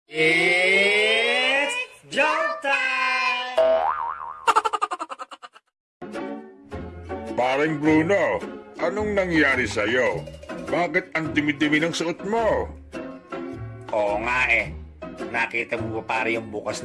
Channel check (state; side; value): identical; both; correlation 1.00